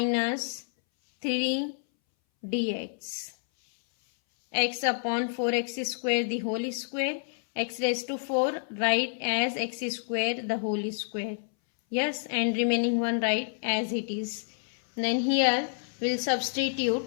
3 dx. X upon 4x square the whole square, x raised to 4 write as x square the whole square. Yes, and remaining one write as it is. Then here we'll substitute.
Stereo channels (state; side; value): silent; right; 59 dB below the other